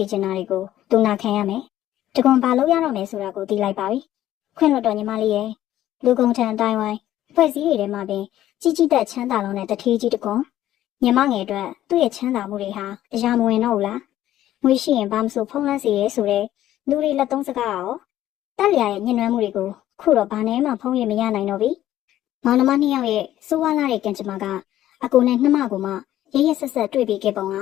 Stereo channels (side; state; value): right; quieter; 13.1 dB